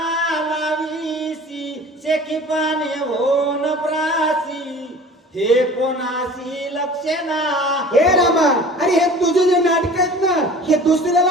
लावीसी शेकी पाने होन प्रासी हे कोणासी लक्षेना. हे रामा अरे हे तुझे जे नाटक आहेत ना हे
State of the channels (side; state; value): both; normal; correlation 0.43